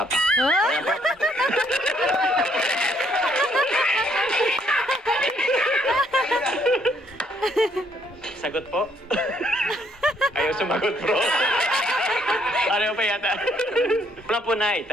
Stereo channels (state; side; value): normal; both; correlation 0.68